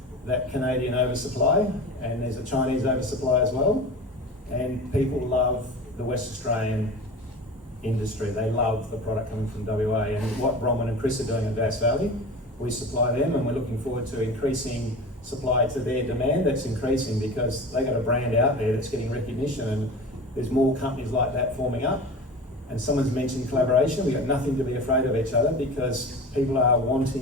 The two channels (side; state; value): both; normal; correlation 0.33